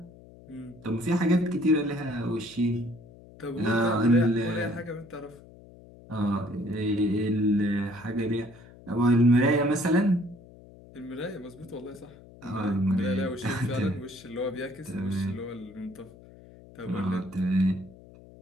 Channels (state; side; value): noise; left; hum, 21 dB below the sound